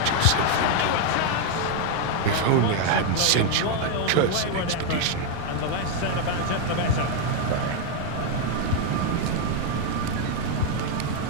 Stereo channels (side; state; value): both; different; correlation 0.01